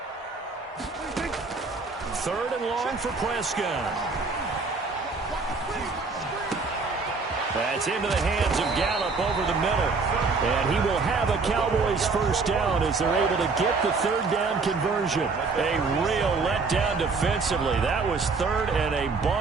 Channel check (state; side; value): quieter; left; 4.3 dB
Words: Third and long for Prescott. That's into the hands of Gallup over the middle. And he will have a Cowboys first down as they're able to get the third down conversion. A real letdown defensively. That was third and a